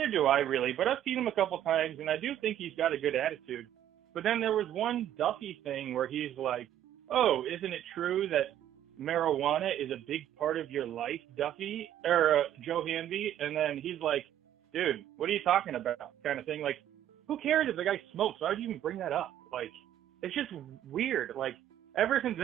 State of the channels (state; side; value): quieter; left; 11.3 dB